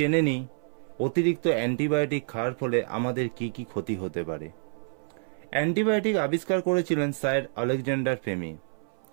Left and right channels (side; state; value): left; silent; 59 dB below the other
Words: নিই অতিরিক্ত অ্যান্টিবায়োটিক খাওয়ার ফলে আমাদের কি কি ক্ষতি হতে পারে। অ্যান্টিবায়োটিক আবিষ্কার করেছিলেন স্যার আলেকজান্ডার ফ্লেমিং।